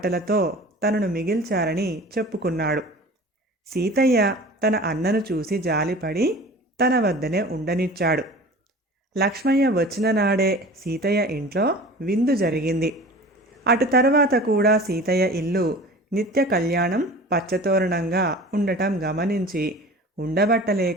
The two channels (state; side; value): normal; both; correlation 0.40